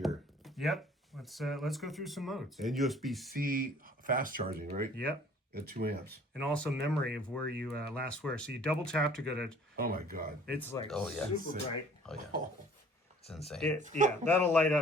Yep. Let's go through some modes. And USB-C fast charging, right? Yep. At 2 amps. And also memory of where you last were. So you double tap to go to. Oh my God. It's like super bright. Oh yeah. It's insane. That'll light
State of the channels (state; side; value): normal; both; correlation 0.53